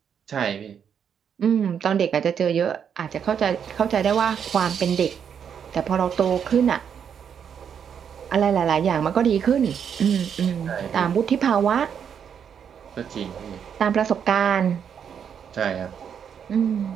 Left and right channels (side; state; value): left; quieter; 7.8 dB